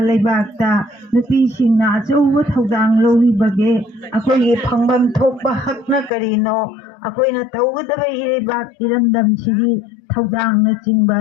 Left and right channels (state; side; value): drops out; right; at 6.1 s